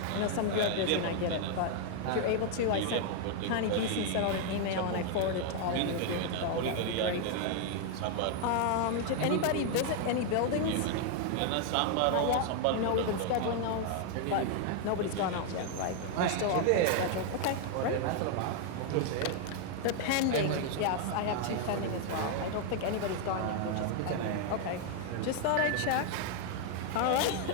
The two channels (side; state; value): both; different; correlation 0.00